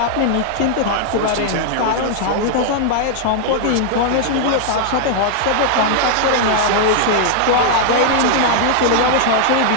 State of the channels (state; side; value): different; both; correlation 0.00